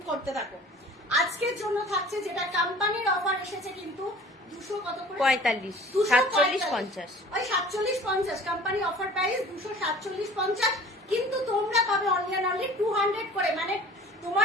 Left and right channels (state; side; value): normal; both; correlation 0.46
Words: করতে থাকো। আজকের জন্য থাকছে, যেটা কোম্পানির অফার এসেছে কিন্তু 200 কত করে? 45, 47, 50। ওই 47, 50 কোম্পানি অফার প্রাইস 247, 50, কিন্তু তোমরা পাবে অনলি অ্যান্ড অনলি 200 করে। মানে